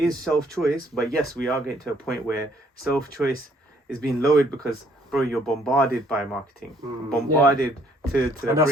self-choice, but yes, we are getting to a point where self-choice is being lowered because, bro, you're bombarded by marketing, bombarded to the and that's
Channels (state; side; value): normal; both; correlation 0.64